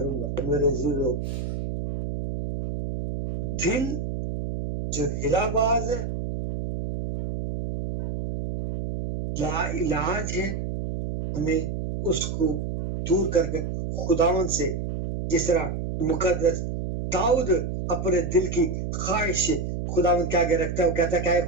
گا. میرے عزیزو، دل جو ہلا باز ہے، لا علاج ہے، ہمیں اس کو دور کر کے خداوند سے، جس طرح مقدس داؤد اپنے دل کی خواہش سے خداوند کے آگے رکھتا ہے، وہ کہتا ہے کہ اے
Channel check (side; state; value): right; noise; hum, 4 dB below the sound